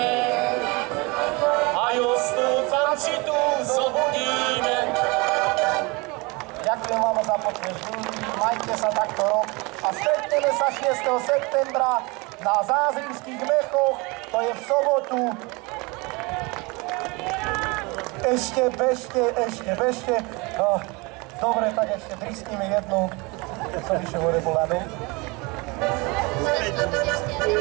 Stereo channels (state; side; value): quieter; left; 26.7 dB